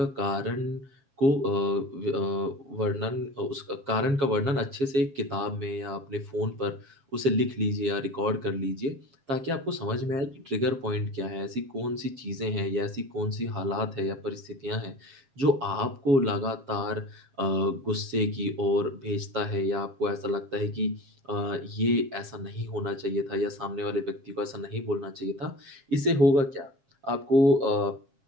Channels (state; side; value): late; left; 7.4 ms